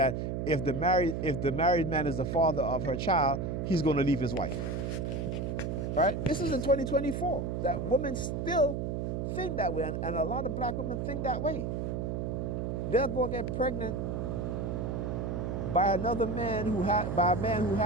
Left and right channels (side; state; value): right; noise; hum, 2 dB below the sound